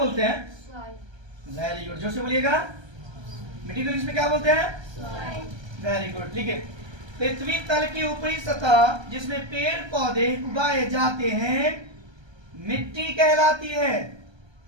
हैं? वेरी गुड, जोर से बोलिएगा। मिट्टी को इंग्लिश में क्या बोलते हैं? वेरी गुड, ठीक है। पृथ्वी तल की ऊपरी सतह जिसमें पेड़ पौधे उगाए जाते हैं मिट्टी कहलाती है।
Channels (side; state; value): left; late; 1.3 ms